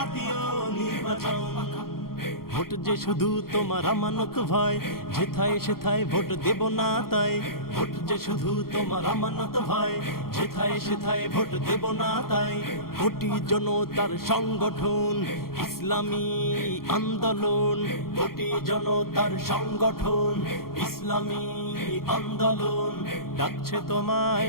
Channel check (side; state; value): right; late; 0.93 ms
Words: নির্বাচন। ভোট যে শুধু তোমার আমানত ভাই, যেথায় সেথায় ভোট দেব না তাই। ভোট যে শুধু তোমার আমানত ভাই, যেথায় সেথায় ভোট দেব না তাই। কোটি জনতার সংগঠন ইসলামী আন্দোলন, কোটি জনতার সংগঠন ইসলামী আন্দোলন, ডাকছে